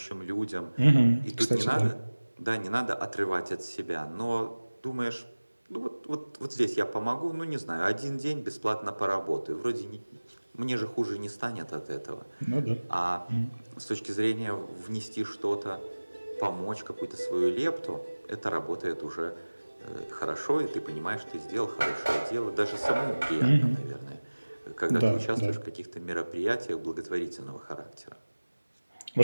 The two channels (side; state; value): both; inverted; correlation -1.00